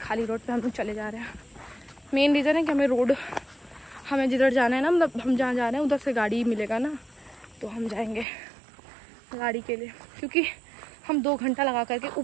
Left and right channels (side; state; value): left; drops out; at 8.2 s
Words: खाली रोड पे हम लोग चले जा रहे हैं। मेन रीज़न है कि हमें जिधर जाना है ना, मतलब हम जहाँ जा रहे हैं उधर से गाड़ी मिलेगा ना, तो हम जाएंगे गाड़ी के लिए, क्योंकि हम 2 घंटा लगा करके